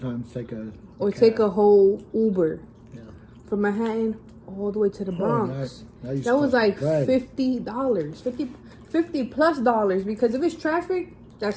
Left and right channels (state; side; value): identical; both; correlation 1.00